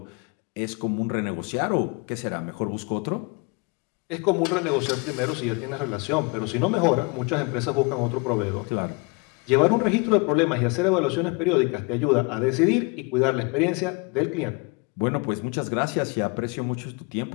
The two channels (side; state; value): right; quieter; 30.0 dB